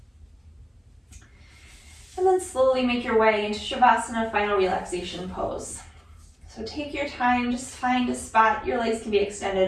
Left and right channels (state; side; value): identical; both; correlation 1.00